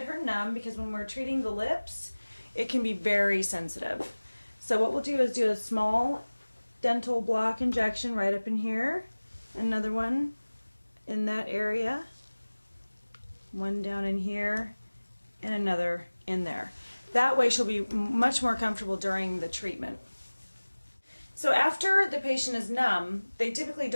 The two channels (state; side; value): inverted; both; correlation -1.00